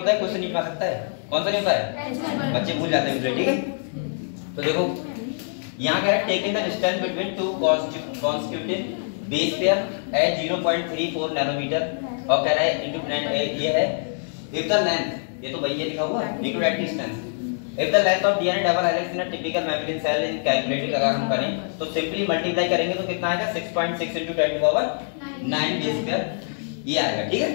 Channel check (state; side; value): silent; right; digital silence